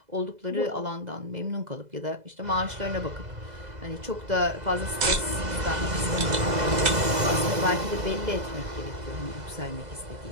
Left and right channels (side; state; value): left; late; 2.0 ms